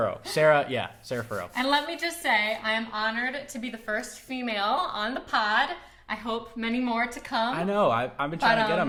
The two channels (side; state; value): both; identical; correlation 1.00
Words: Sarah Furrow. And let me just say, I am honored to be the first female on the pod. I hope many more to come. I know. I've been trying to get